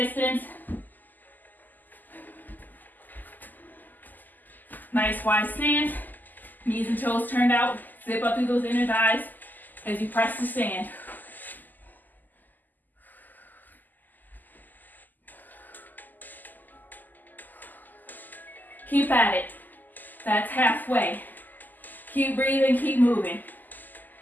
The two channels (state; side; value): late; right; 0.085 ms